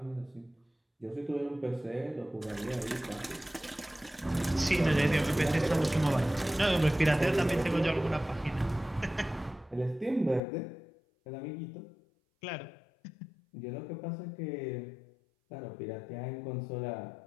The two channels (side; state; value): right; drops out; at 10.4 s